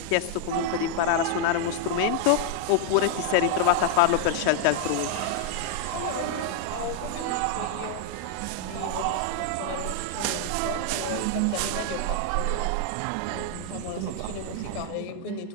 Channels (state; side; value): different; both; correlation 0.00